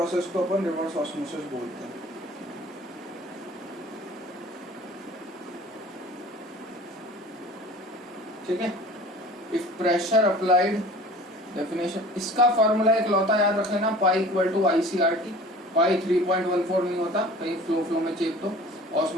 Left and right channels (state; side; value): normal; both; correlation 0.44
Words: को अपन रिवर्स ऑस्मोसिस बोलते हैं। ठीक है, इफ प्रेशर अप्लाइड, डेफिनेशन इसका फॉर्मूला एक लौता याद रखे ना, पाई इक्वल टू ICRT। पाई 3.14 नहीं होता, कहीं फ्लो में चेक तो